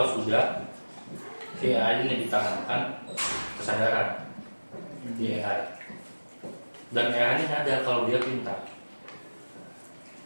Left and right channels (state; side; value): inverted; both; correlation -1.00